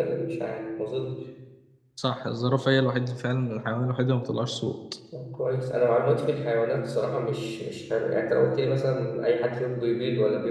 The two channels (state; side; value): identical; both; correlation 1.00